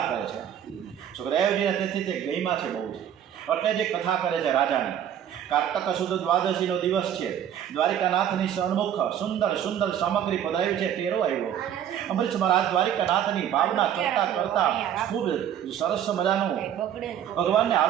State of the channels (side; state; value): left; quieter; 9.9 dB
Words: કરે છે. સુખદેવજીને તેથી તે ગઈમાં છે બહુ જ, એટલે જે કથા કરે છે રાજાની. કાર્તક સુદ દ્વાદશીનો દિવસ છે. દ્વારિકાનાથની સન્મુખ સુંદર સુંદર સામગ્રી પધરાવી છે. ટેરો આવ્યો. અમરીશ મહારાજ દ્વારિકાનાથની ભાવના કરતાં કરતાં ખૂબ સરસ મજાનું ભગવાનને